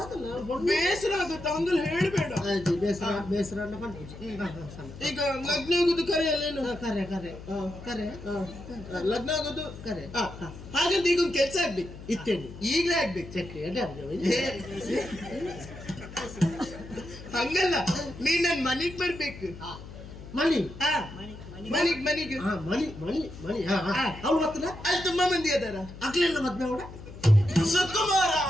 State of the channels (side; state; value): left; noise; hum, 14 dB below the sound